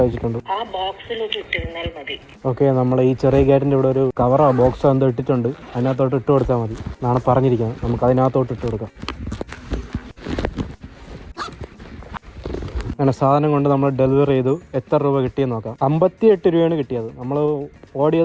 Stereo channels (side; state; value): both; identical; correlation 1.00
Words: അയച്ചിട്ടുണ്ട്. ഓക്കെ, നമ്മൾ ഈ ചെറിയ ഗേറ്റിൻ്റെ ഇവിടെ ഒരു കവറോ ബോക്സോ എന്തോ ഇട്ടിട്ടുണ്ട്. അതിനകത്തോട്ട് ഇട്ട് കൊടുത്താൽ മതി എന്നാണ് പറഞ്ഞിരിക്കുന്നത്. നമുക്ക് അതിനകത്തോട്ട് ഇട്ട് കൊടുക്കാം. അങ്ങനെ സാധനം കൊണ്ട് നമ്മൾ ഡെലിവറി ചെയ്തു. എത്ര രൂപ കിട്ടിയെന്ന് നോക്കാം. 58 രൂപയാണ് കിട്ടിയത്. നമ്മൾ